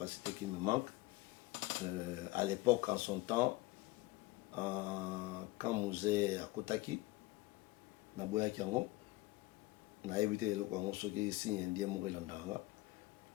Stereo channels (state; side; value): quieter; right; 19.7 dB